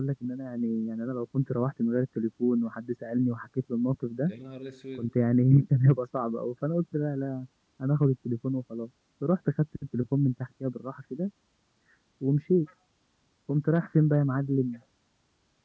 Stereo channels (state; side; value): identical; both; correlation 1.00